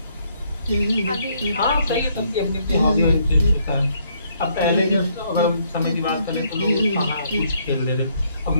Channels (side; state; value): both; inverted; correlation -0.69